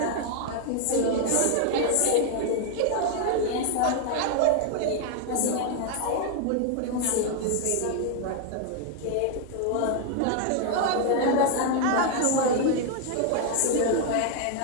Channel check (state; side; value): different; both; correlation 0.00